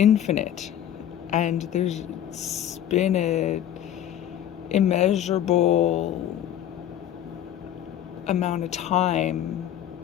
and there's been a immeasurable amount of time,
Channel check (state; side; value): quieter; right; 11.1 dB